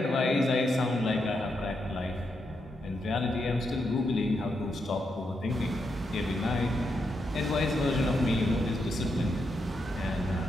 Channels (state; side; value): normal; both; correlation 0.82